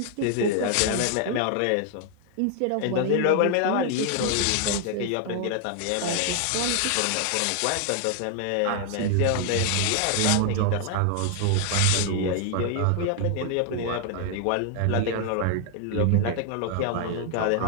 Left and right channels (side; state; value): both; different; correlation 0.00